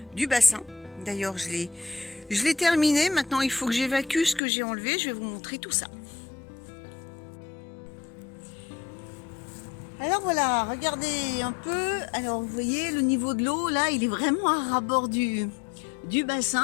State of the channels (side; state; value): right; drops out; at 4.4 s